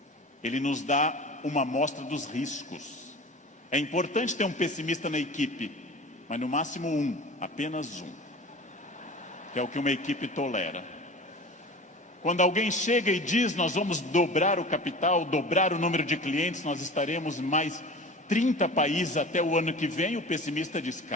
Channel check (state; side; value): normal; both; correlation 0.36